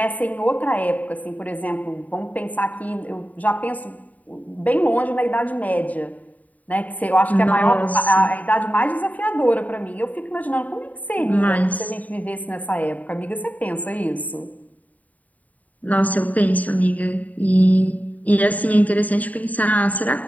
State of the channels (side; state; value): right; late; 0.074 ms